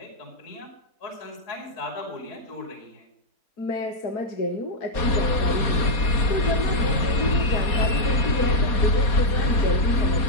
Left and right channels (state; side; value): late; right; 4.2 ms